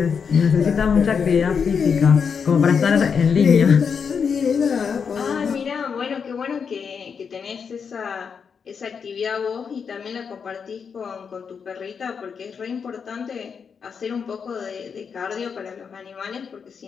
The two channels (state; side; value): quieter; right; 6.3 dB